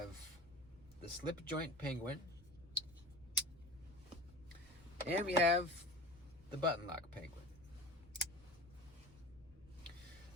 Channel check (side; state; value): both; normal; correlation 0.33